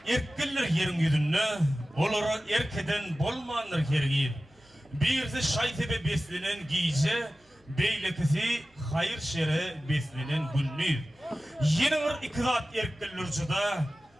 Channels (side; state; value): both; normal; correlation 0.95